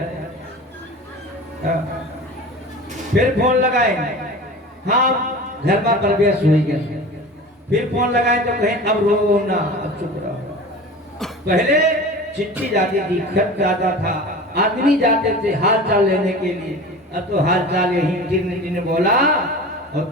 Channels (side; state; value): both; normal; correlation 0.35